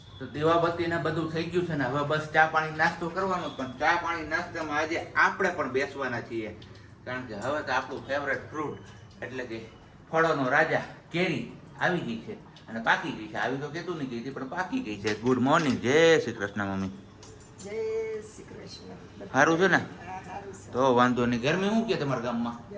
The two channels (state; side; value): identical; both; correlation 1.00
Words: તો દીવાબત્તી ને બધું થઈ ગયું છે ને હવે બસ ચા પાણી નાસ્તો કરવાનો. પણ ચા પાણી નાસ્તામાં આજે આપણે પણ બેસવાના છીએ, કારણ કે હવે તો આપણું ફેવરેટ ફ્રૂટ એટલે કે ફળોનો રાજા કેરી આવી ગઈ છે અને પાકી ગઈ છે. આવી તો કહેતું નહીં ગઈ હતી, પણ પાકી ગઈ છે. ગુડ મોર્નિંગ, જય શ્રી કૃષ્ણ મમ્મી. જય શ્રી કૃષ્ણ. સારું છે ને? તો વાંધો નહીં. ગરમી શું કે તમારા ગામમાં?